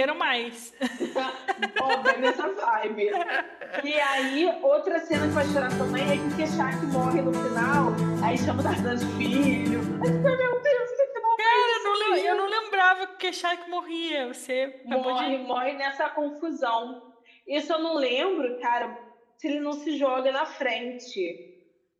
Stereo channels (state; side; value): identical; both; correlation 1.00